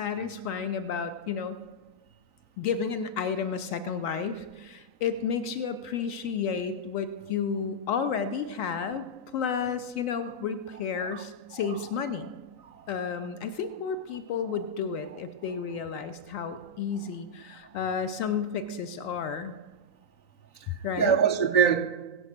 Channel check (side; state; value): right; late; 3.9 ms